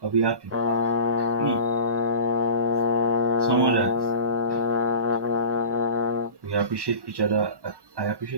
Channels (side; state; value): left; late; 1.1 ms